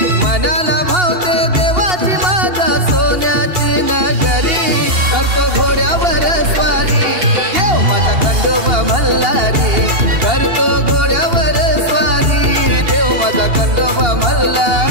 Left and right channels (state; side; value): late; left; 2.8 ms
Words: मनाला भावते देवाची माझ्या सोन्याची नगरी। करतो घोड्यावर स्वारी देव माझा खंडोबा मल्हारी, करतो घोड्यावर स्वारी देव माझा खंडोबा